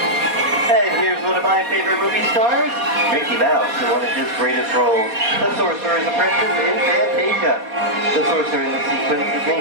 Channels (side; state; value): left; late; 4.2 ms